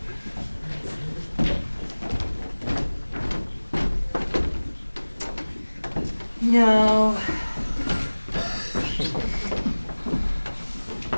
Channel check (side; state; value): both; inverted; correlation -1.00